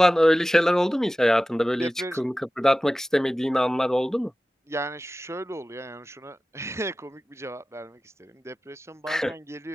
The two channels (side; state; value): both; normal; correlation 0.96